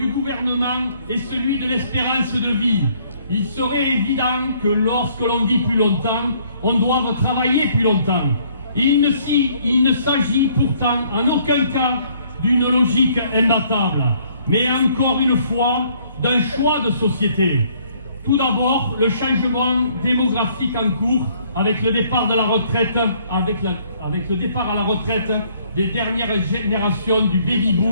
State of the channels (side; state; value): both; inverted; correlation -0.63